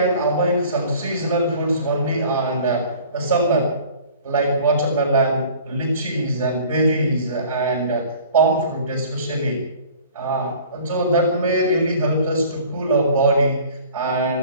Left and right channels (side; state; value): both; inverted; correlation -0.48